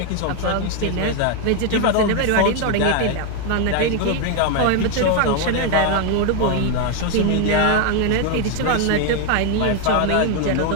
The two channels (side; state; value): both; different; correlation 0.01